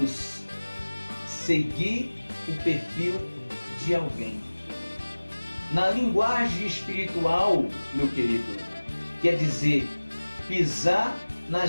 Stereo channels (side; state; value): both; inverted; correlation -1.00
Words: seguir o perfil de alguém. Na linguagem espiritual, meu querido, quer dizer pisar